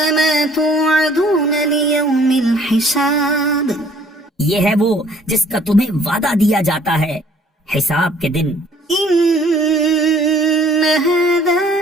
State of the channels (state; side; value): normal; both; correlation 0.57